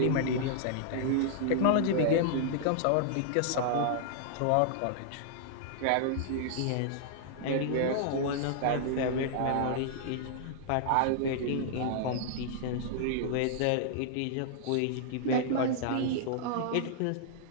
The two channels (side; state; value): both; different; correlation -0.01